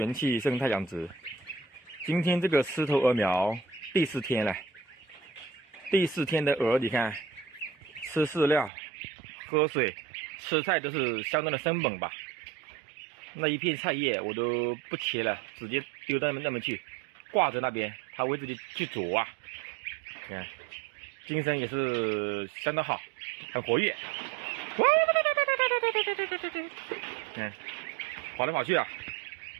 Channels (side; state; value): left; drops out; at 8.7 s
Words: 气生态养殖。今天这个狮头鹅苗第4天了，第4天的鹅，你看，吃饲料、喝水、吃菜都是相当的生猛吧。那一片菜叶我都不切了，直接丢到那边去，挂着那边，它会自己去啄啊。你看，精神也是相当好，很活跃。看，跑来跑去啊。